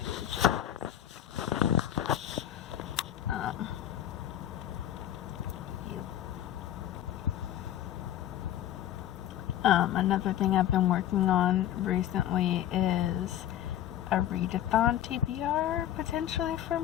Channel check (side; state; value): right; quieter; 11.7 dB